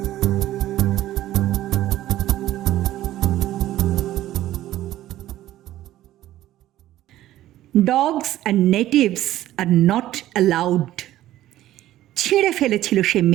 Dogs and natives are not allowed. ছিঁড়ে ফেলেছিল সে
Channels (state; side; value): quieter; left; 14.1 dB